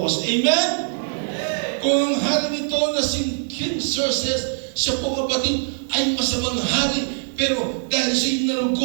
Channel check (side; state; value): left; silent; 64 dB below the other